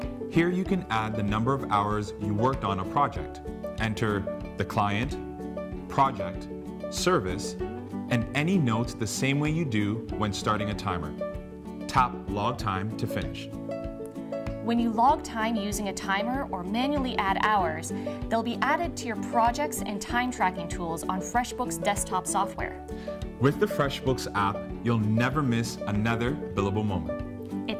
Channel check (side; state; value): both; identical; correlation 1.00